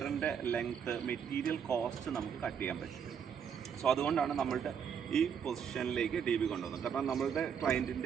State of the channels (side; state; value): left; quieter; 7.6 dB